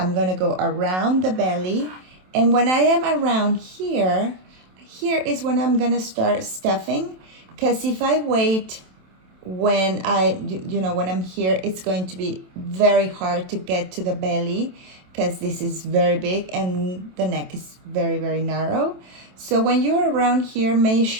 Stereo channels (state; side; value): late; left; 27 ms